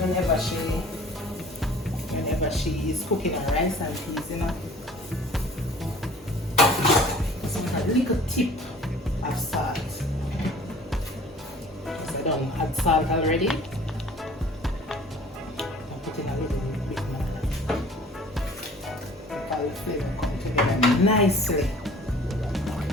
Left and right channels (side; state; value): both; normal; correlation 0.49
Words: whenever she is cooking her rice and peas, you know. So a little tip of salt. So I don't add salt already. I'm putting a little bit more. All the flavor come together nicely.